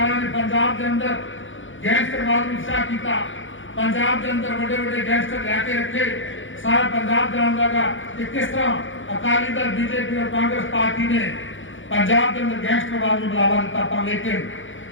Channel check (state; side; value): late; right; 0.56 ms